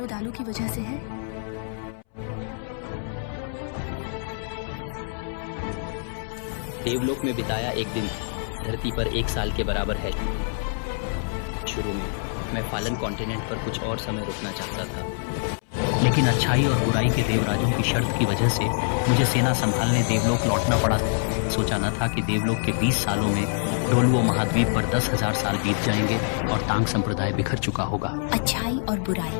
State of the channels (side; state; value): right; silent; 61 dB below the other